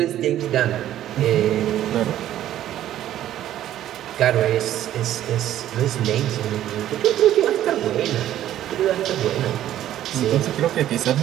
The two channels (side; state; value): left; quieter; 12.3 dB